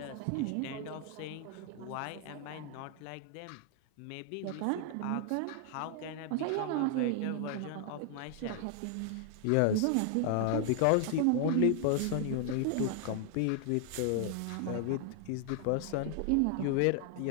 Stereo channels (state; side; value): different; both; correlation 0.00